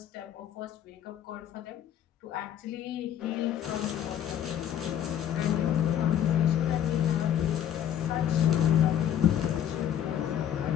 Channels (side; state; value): right; quieter; 10.1 dB